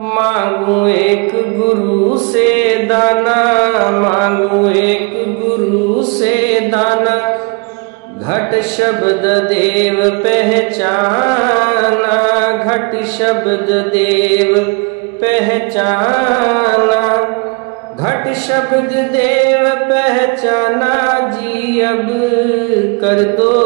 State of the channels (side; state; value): left; quieter; 32.1 dB